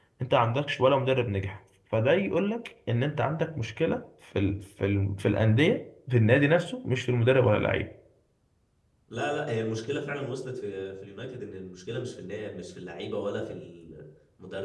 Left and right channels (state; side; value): identical; both; correlation 1.00